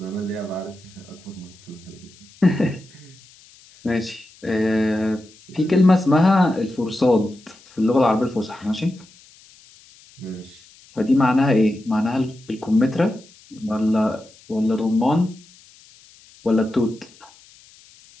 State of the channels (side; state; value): left; noise; hiss, 26 dB below the sound